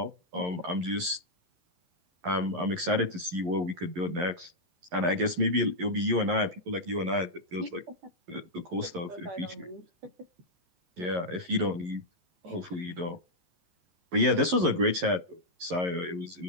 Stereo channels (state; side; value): late; left; 11 ms